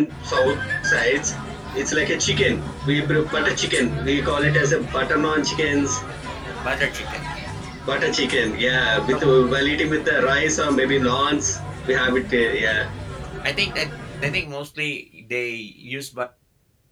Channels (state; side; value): identical; both; correlation 1.00